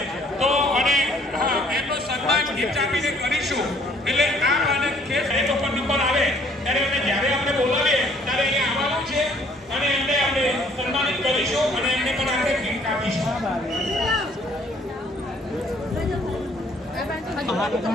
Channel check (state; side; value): normal; both; correlation 0.61